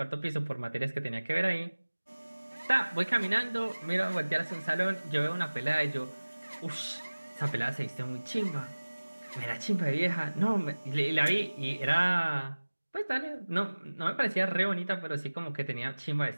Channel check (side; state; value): both; inverted; correlation -1.00